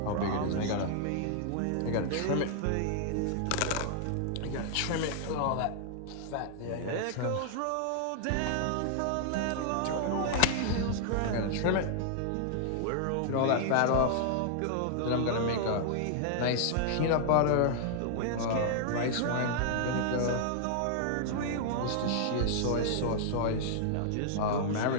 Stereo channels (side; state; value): both; different; correlation -0.01